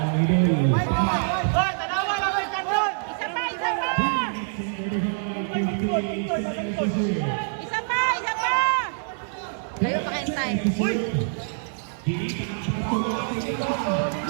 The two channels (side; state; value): left; silent; 62 dB below the other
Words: Hoy, tanawa lang kayo kandun! Layo pa kayong time.